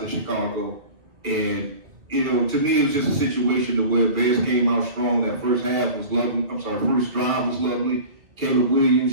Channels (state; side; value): late; left; 2.0 ms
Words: in Chicago. And, to me, it was just a situation where Bears came out strong. That first half was lovely. First drive was lovely. Caleb Williams,